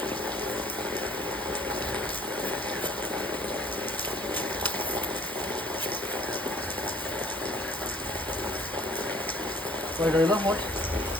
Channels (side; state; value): both; normal; correlation 0.54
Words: কয়টা হলো মোট?